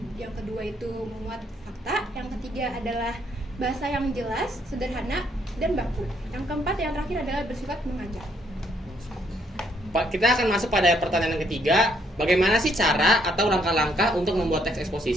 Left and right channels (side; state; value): both; normal; correlation 0.70